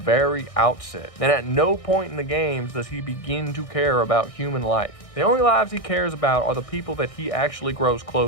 outset. And at no point in the games does he begin to care about human life. The only lives he cares about are the people that he actually grows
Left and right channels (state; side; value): late; right; 1.6 ms